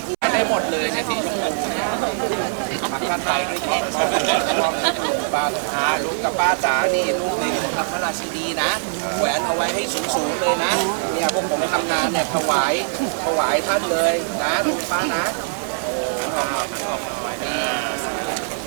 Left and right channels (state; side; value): silent; left; 64 dB below the other